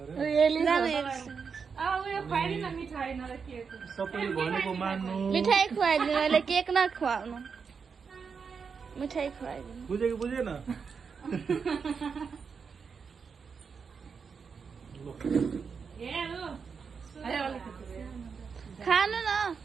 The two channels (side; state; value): left; quieter; 5.8 dB